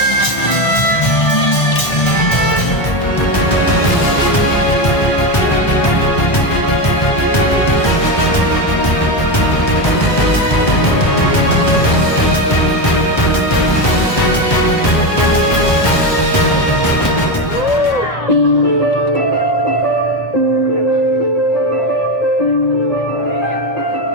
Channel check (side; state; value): right; late; 1.4 ms